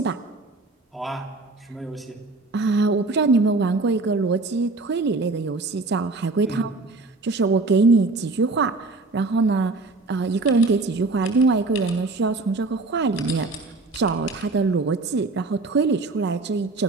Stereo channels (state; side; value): quieter; left; 3.4 dB